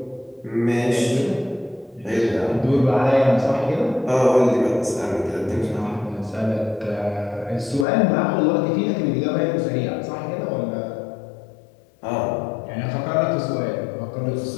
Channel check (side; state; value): right; drops out; at 7.9 s